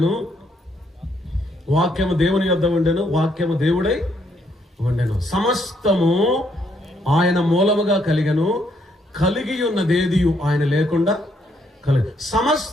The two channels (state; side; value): normal; both; correlation 0.73